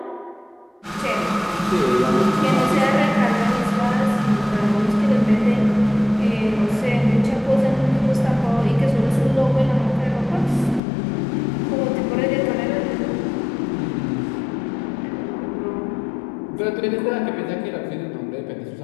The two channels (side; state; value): right; drops out; at 10.8 s